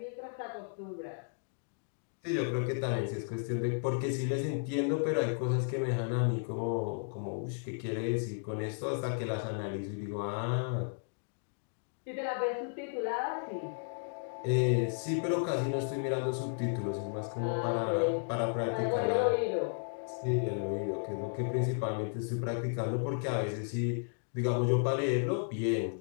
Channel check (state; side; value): silent; right; digital silence